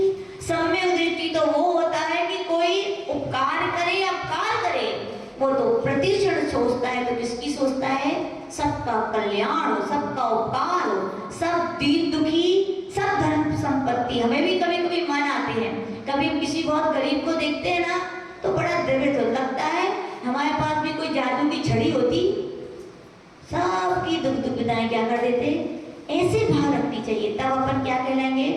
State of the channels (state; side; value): identical; both; correlation 1.00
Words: सम्यक दृष्टि तो वो होता है कि कोई उपकार करे, अपकार करे, वो तो प्रतिक्षण सोचता है, तो किसकी सोचता है? सबका कल्याण हो, सबका उपकार हो, सब दीन दुखी, सब धन संपत्ति। हमें भी कभी कभी मन आते हैं, कभी हम किसी बहुत गरीब को देखते हैं ना तो बड़ा द्रवित हो लगता है हमारे पास भी कोई जादू की छड़ी होती, सबकी दुख दुविधाएं क्या कर देते। ऐसे भाव रखनी चाहिए, तब अपन क्या कहलाएंगे?